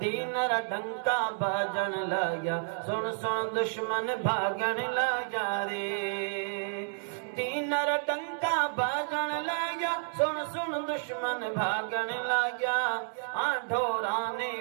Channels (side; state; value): left; silent; 57 dB below the other